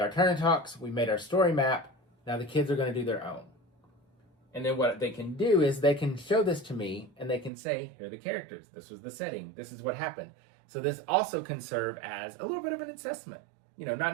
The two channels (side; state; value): left; drops out; at 7.5 s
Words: turn and talks, we made our story map. Now the kids are going to do their own. And then what they can do is they can show this to me and they can say, here are the characters. This was the setting. This is what happened. So this also can serve as a little bit of an assessment. You know,